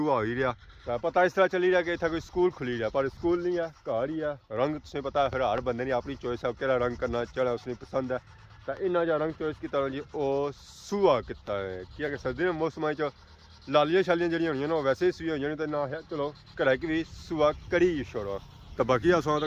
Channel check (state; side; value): identical; both; correlation 1.00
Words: हो ही रहा तो पता इस तरह चली रहा कि इतना कोई स्कूल खुली रहा पर स्कूल नहीं है घर ही है रंग तुसें पता है फिर हर बंदे ने अपनी चॉइस है केड़ा रंग करना चढ़ा उसने पसंद है तो इन्ना जा रंग चॉइस किया जी वो सुबह किता है कि सर्दी के मौसम लालियां शालियां जड़ियां होनी ना वैसे ही सुई हो जानी तो ना है चलो घर की भी सुबह करी छोड़ो तो बाकी सौ